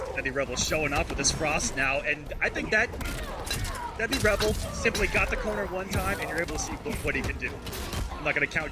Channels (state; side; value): identical; both; correlation 1.00